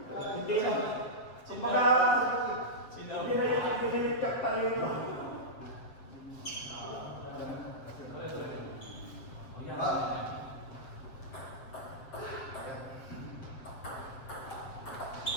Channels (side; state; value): right; late; 7.7 ms